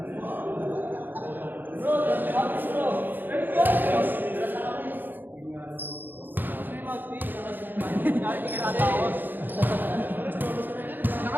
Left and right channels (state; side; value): late; left; 0.090 ms